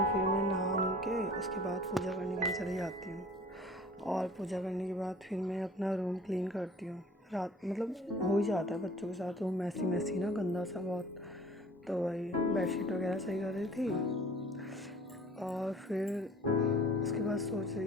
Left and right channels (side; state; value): both; normal; correlation 0.48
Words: फिर मैं नहा नु के उसके बाद पूजा करने के लिए चली जाती हूँ। और पूजा करने के बाद फिर मैं अपना रूम क्लीन करती हूँ। रात हो ही जाता है बच्चों के साथ, रूम मैसी ना, गंदा सा बहुत। तो वही बेडशीट वगैरह सही कर रही थी और फिर उसके बाद सोच